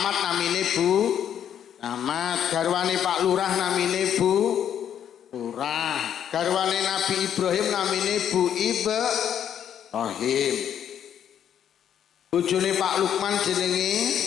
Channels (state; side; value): quieter; right; 9.4 dB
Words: namine Bu Camat, garwane Pak Lurah namine Bu Lurah, garwane Nabi Ibrahim namine Bu Ibrahim. Bojone Pak Lukman jenenge